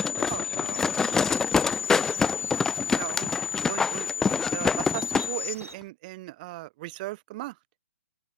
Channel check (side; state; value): right; quieter; 4.2 dB